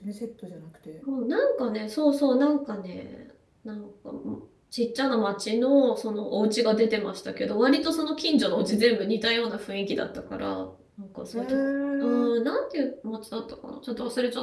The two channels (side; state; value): both; identical; correlation 1.00